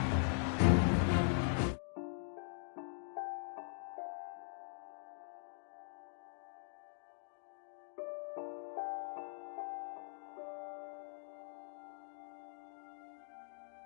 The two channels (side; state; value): right; silent; digital silence